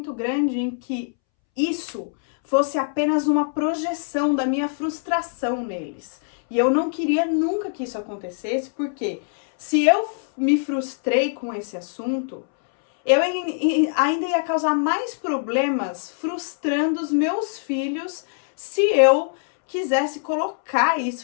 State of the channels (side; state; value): right; silent; 63 dB below the other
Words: grande em que isso fosse apenas uma projeção da minha frustração neles. E eu não queria nunca que isso acontecesse, porque se eu me frustrei com esse assunto, eu ainda ia causar mais problemas frustrando os meus filhos se eu quisesse colocar